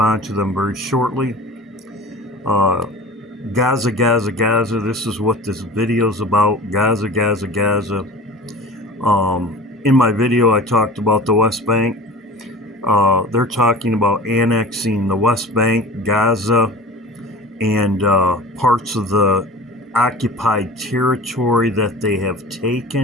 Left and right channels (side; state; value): both; normal; correlation 0.37